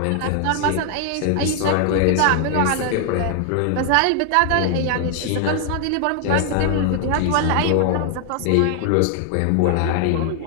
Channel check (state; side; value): different; both; correlation 0.00